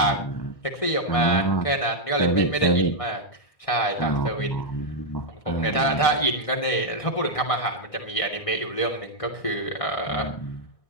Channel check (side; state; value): right; late; 1.6 ms